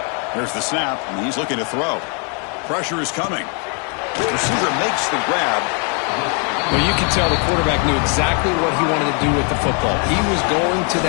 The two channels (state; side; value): quieter; right; 38.0 dB